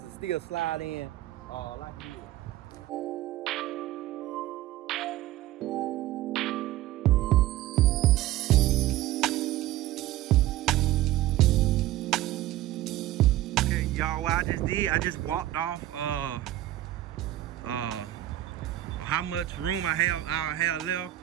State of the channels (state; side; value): quieter; left; 14.7 dB